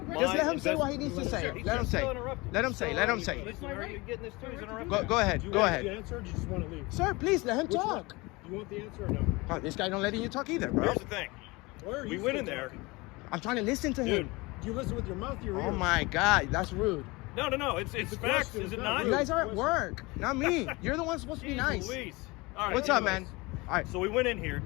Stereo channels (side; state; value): right; quieter; 23.9 dB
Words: my let him say what he needs to invest- say. He's Let him just say. so interrupted. Let him say. Let him say. Listen, are you getting this too? He's interrupting. Go ahead. Do you Go want ahead. the answer or do you just want to leave? Sir, please let him Which one? talk. Do you want the answer or no? Oh, this guy don't letting you talk either, bro. Here's the thing. Where are We you went still in there. talking? I'm trying to listen to Dude. him. Do you listen with your mouth or your ears? Oh my God, that's rude. No. It's a facts, question, is it it's not? not You guys are at work, not me. You're the one supposed to be Jeez nice. Louise. All right, What's up, anyways. man? All right. So we went in here,